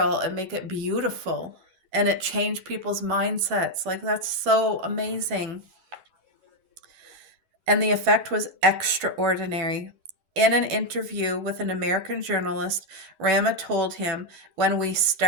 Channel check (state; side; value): late; left; 11 ms